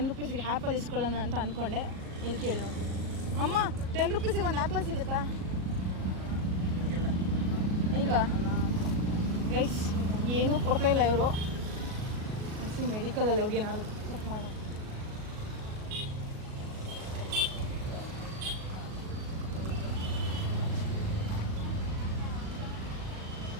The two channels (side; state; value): left; late; 37 ms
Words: ರೂಪೀಸ್ಗೆ ಆ್ಯಪಲ್ ಇಸ್ಕೊಳ್ಳೋಣ ಅಂತ ಅಂದ್ಕೊಂಡೆ. ಇಲ್ಲಿ ಕೇಳಿ ನೋಡ್ತೀನಿ. ಅಮ್ಮ, 10 ರೂಪೀಸಿಗೆ ಒಂದು ಆ್ಯಪಲ್ ಸಿಗುತ್ತಾ? ಇಲ್ವಾ ಗೈಸ್? ಏನೂ ಕೊಡ್ತಾ ಇಲ್ಲ ಇವರು. ಅನಿಸಿ ಮೆಡಿಕಲಲ್ಲಿ ಹೋಗಿ ಏನಾದ್ರು ಚೆಕ್ ಮಾಡೋ.